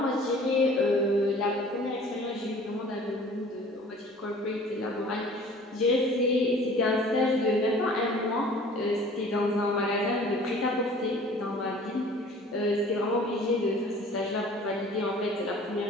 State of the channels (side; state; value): both; normal; correlation 0.48